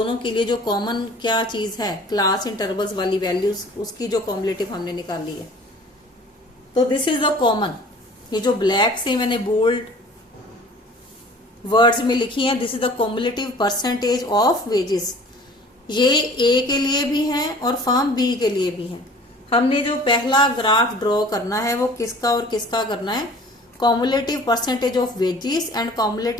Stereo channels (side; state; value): both; normal; correlation 0.47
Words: के लिए जो कॉमन क्या चीज है, क्लास इंटरवल्स वाली वैल्यूज, उसकी जो कॉम्युलेटिव हमने निकाली है। तो दिस इज द कॉमन, ये जो ब्लैक से मैंने बोल्ड वर्ड्स में लिखी है, this is the cumulative percentage of wages. ये ए के लिए भी है और फर्म बी के लिए भी है। हमने जो पहला ग्राफ ड्रॉ करना है वो किसका और किसका करना है, cumulative percentage of wages and